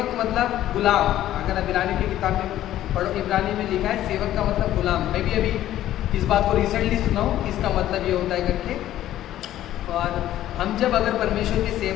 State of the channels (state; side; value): quieter; right; 13.1 dB